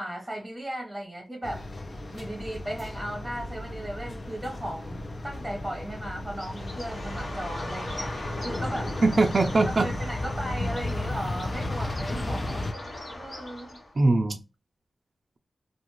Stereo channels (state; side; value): normal; both; correlation 0.94